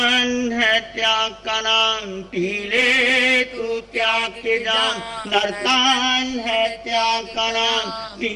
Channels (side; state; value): both; identical; correlation 1.00